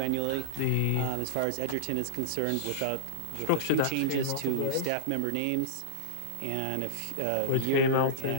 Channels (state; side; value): different; both; correlation -0.02